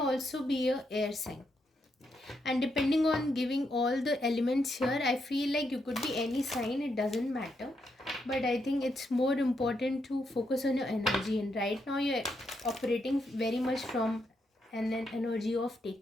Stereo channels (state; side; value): normal; both; correlation 0.80